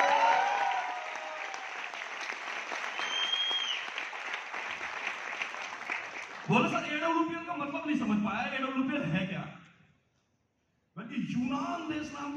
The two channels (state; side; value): identical; both; correlation 1.00